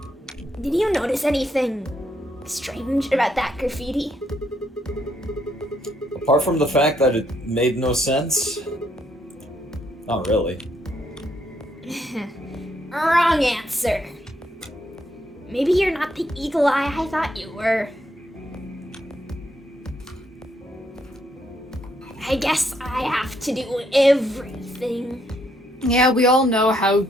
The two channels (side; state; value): both; normal; correlation 0.74